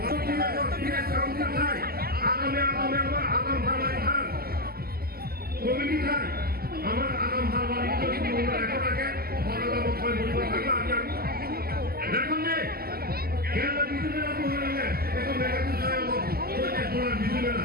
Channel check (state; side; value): late; left; 0.45 ms